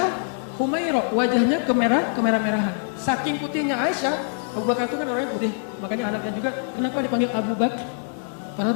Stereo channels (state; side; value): silent; right; digital silence